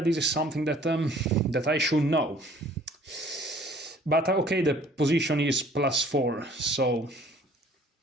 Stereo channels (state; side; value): normal; both; correlation 0.55